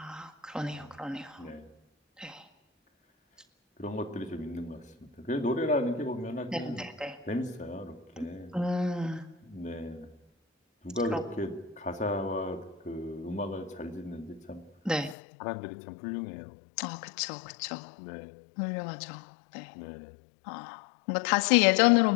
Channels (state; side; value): drops out; right; at 15.2 s